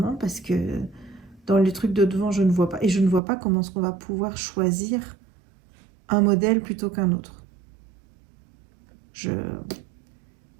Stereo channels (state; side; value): drops out; left; at 3.2 s